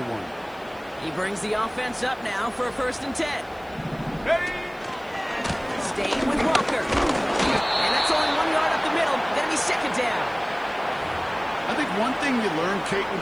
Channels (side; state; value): left; noise; hiss, 28 dB below the sound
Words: one. He brings the offense up now for a 1st and 10. Staying with Walker. And that's only 1 yard up the middle. Gonna be 2nd down. I think one thing you learn, Kate,